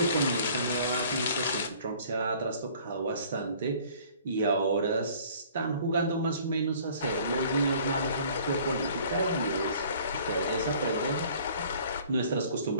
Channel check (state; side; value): inverted; both; correlation -0.53